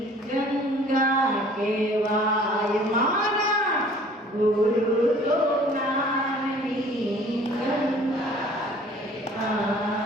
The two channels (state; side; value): normal; both; correlation 0.51